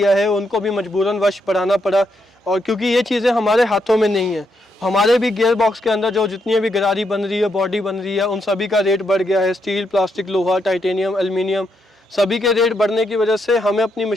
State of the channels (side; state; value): both; normal; correlation 0.79